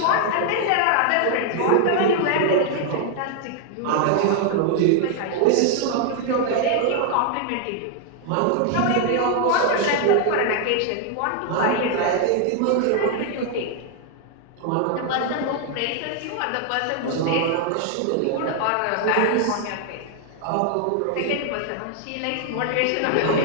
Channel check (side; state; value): both; different; correlation 0.00